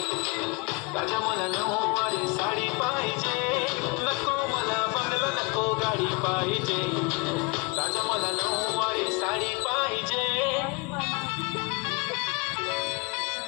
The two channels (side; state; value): right; quieter; 28.9 dB